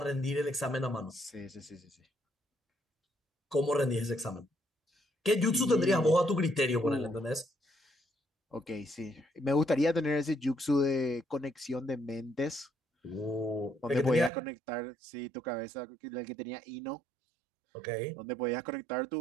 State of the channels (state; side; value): drops out; left; at 14.3 s